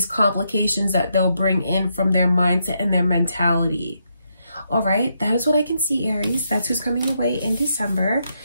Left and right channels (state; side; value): inverted; both; correlation -0.80